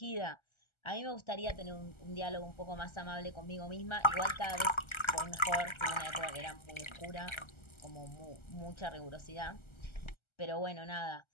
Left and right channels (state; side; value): late; right; 1.3 ms